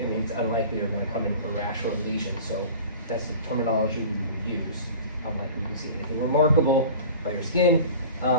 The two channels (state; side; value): inverted; both; correlation -0.40